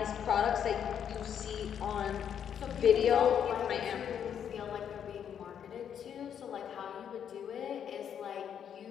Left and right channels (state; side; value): quieter; right; 8.6 dB